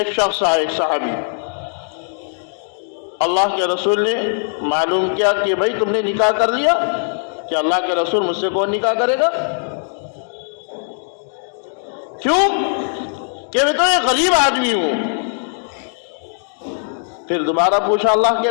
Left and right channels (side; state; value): right; silent; digital silence